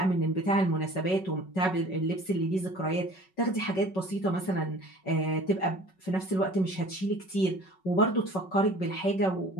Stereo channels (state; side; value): late; right; 5.3 ms